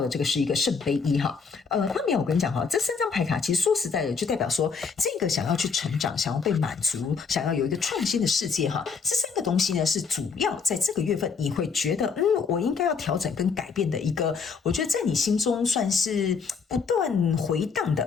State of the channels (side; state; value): right; quieter; 5.5 dB